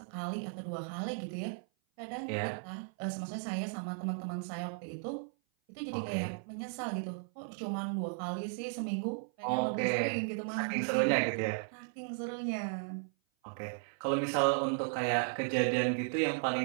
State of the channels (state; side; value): silent; left; 54 dB below the other